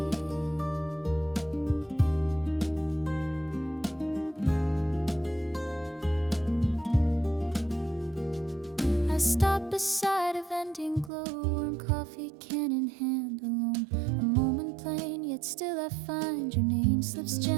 I stop beside a vending glow, warm coffee can in hand alone. A moment plain, yet still I find your name slips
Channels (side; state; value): left; drops out; at 11.1 s